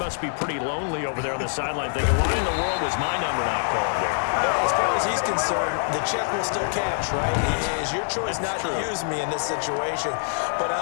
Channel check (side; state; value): right; silent; 62 dB below the other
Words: be pretty lonely over there on the sideline thinking, why in the world was my number not called there? As far as he's concerned, the check will still cash, right? It is your choice not to use me in this situation. But I